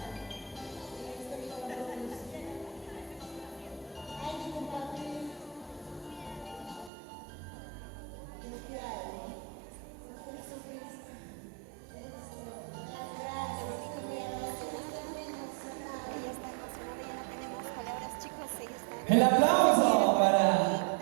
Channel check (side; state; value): left; drops out; at 6.9 s